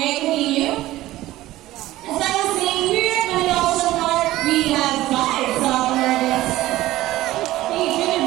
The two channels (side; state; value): left; quieter; 16.2 dB